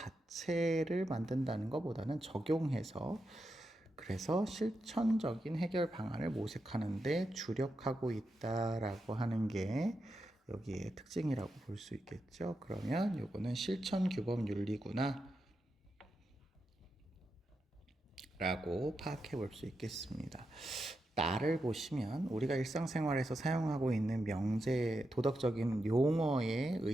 만든다는 것보다는 적용해서 그래서 실천적인 해결 방안을 모색하는데 주력하고 있다라고 하는 게 여기에 특징이라고 볼 수 있겠죠. 그러면 요거는 실천 규범 윤리구나 라고 파악해 볼 수 있겠습니다. 나를 보시면 우리가 일상생활에서 사용하고 있는 명제, 도덕적인 용어의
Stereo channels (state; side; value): normal; both; correlation 0.87